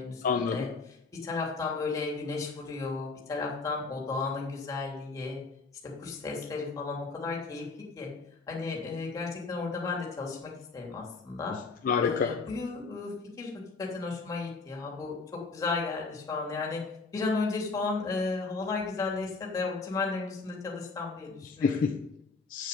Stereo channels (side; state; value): right; quieter; 4.1 dB